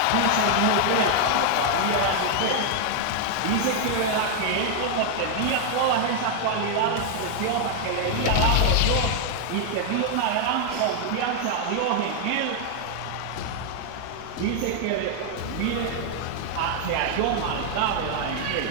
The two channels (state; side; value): different; both; correlation 0.00